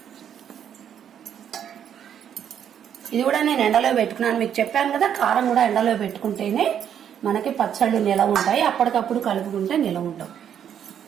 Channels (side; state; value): left; quieter; 9.0 dB